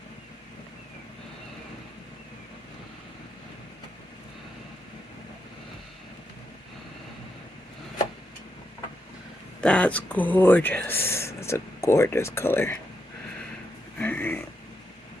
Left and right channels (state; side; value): normal; both; correlation 0.83